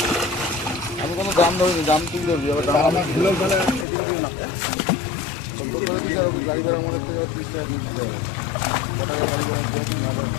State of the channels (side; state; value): right; drops out; at 3.9 s